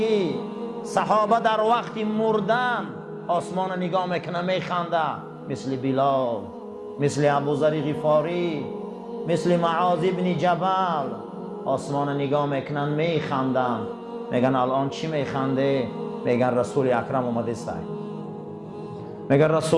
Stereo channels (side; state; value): both; identical; correlation 1.00